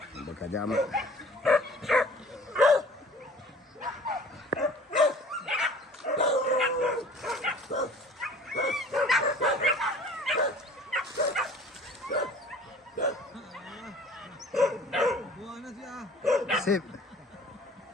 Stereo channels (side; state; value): both; normal; correlation 0.48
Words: Bekerja amat. Sip.